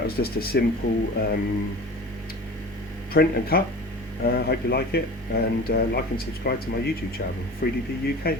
was just a simple print and cut. Hope you like it, and like and subscribe to my YouTube channel. 3DP UK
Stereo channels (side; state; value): both; normal; correlation 0.38